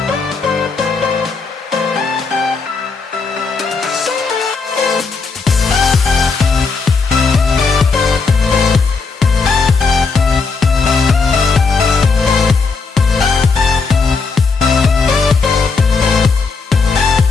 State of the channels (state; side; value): quieter; right; 4.6 dB